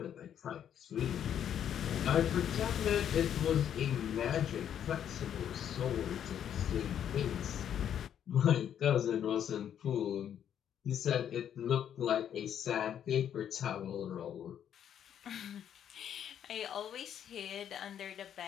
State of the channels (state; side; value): quieter; right; 9.5 dB